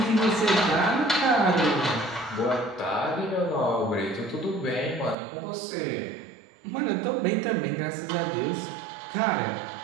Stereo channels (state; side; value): drops out; left; at 5.2 s